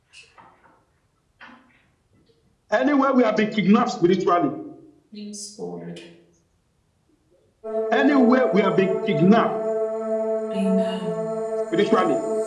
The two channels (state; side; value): identical; both; correlation 1.00